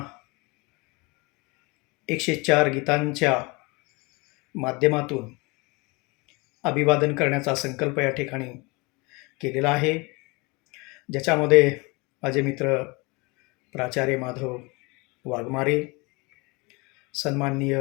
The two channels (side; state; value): right; quieter; 27.0 dB